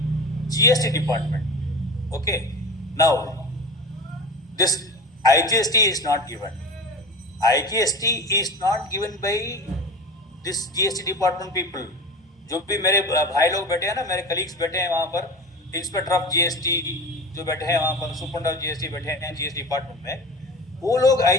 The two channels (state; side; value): normal; both; correlation 0.31